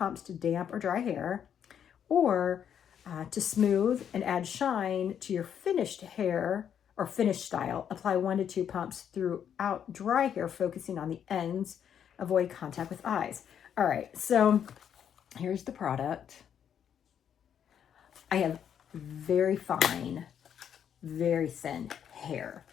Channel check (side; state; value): right; quieter; 8.7 dB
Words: to damp or dry hair, or to smooth and add shine to your finished hair or finished style, apply 1 to 2 pumps throughout dry hair, focusing on the ends, avoid contact with eyes. All right, so here's the product. I have very fine, very thin hair.